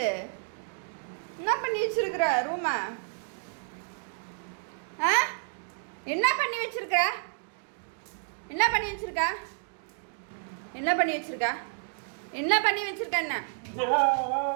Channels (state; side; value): silent; left; digital silence